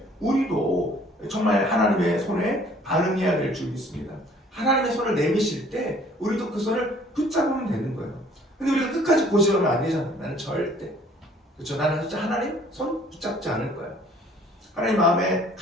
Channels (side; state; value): both; normal; correlation 0.57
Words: 우리도 정말 하나님의 손에 반응해야 될 줄 믿습니다. 하나님의 손을 내미실 때 우리도 그 손을 붙잡으면 되는 거예요. 근데 우리가 끝까지 고집하면 안 되잖아요. 나는 절대, 그렇죠? 나는 진짜 하나님 손 붙잡지 않을 거야. 하나님 마음에